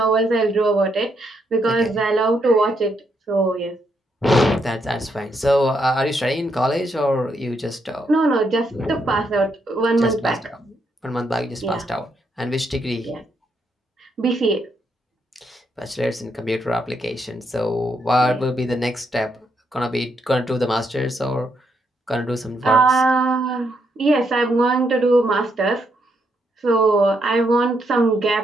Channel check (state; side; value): normal; both; correlation 0.77